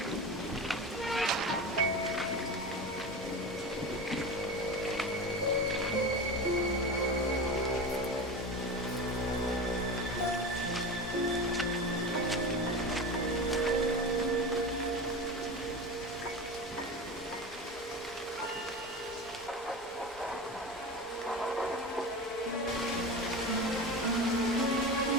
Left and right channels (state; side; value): normal; both; correlation 0.27